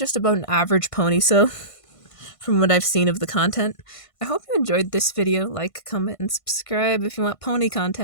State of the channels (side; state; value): right; late; 1.5 ms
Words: about an average pony show from what I've seen of the content. I hope you enjoyed this video. Like, comment, and subscribe if you want pony